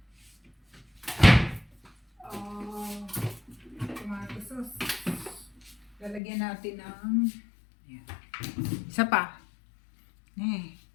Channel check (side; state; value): right; drops out; at 6.2 s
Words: Tomato sauce. Lalagyan natin ng yan. Isa pa.